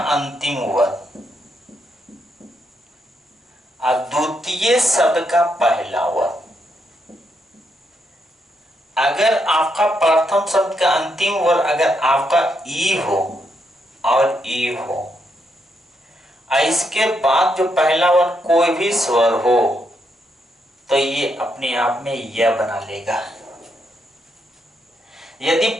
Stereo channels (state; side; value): normal; both; correlation 0.79